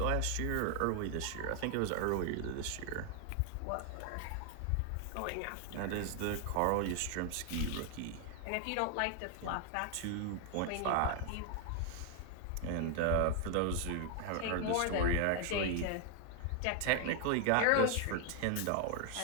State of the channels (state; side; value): different; both; correlation 0.00